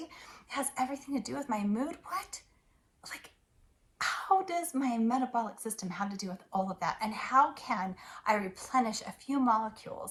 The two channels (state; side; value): identical; both; correlation 1.00